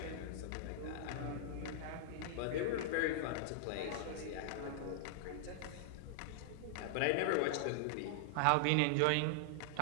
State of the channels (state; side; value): different; both; correlation -0.01